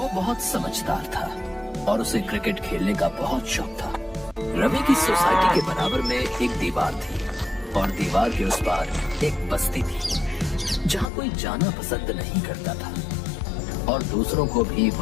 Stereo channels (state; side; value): drops out; right; at 11.1 s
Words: बहुत समझदार था और उसे क्रिकेट खेलने का बहुत शौक था। रवि की सोसाइटी के बराबर में एक दीवार थी और दीवार के उस पार एक बस्ती थी जहाँ कोई जाना पसंद नहीं करता था और दूसरों को भी